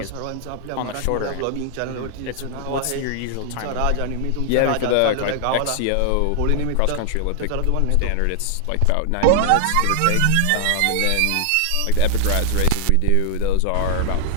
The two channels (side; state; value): both; different; correlation 0.00